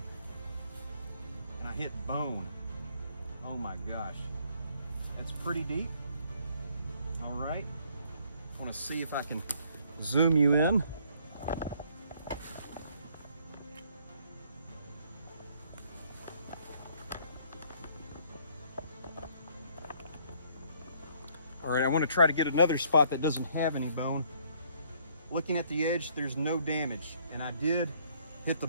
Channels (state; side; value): inverted; both; correlation -0.63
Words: And I hit bone. Oh my gosh. That's pretty deep. All right. I want to see if I can zoom you in. All right, I want to try to get another spot that doesn't have any bone. Looking at the edge, there's no damage, and I did hit the